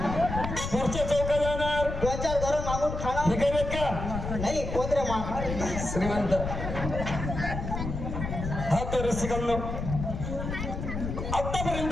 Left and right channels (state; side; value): noise; left; rumble, 5 dB below the sound